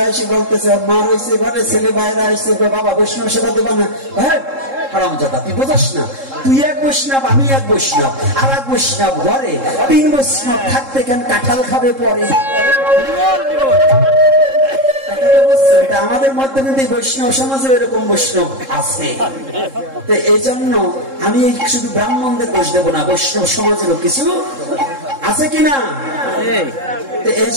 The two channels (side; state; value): left; late; 3.7 ms